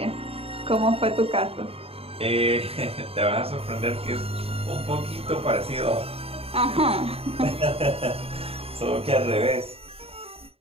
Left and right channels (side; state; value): left; late; 0.28 ms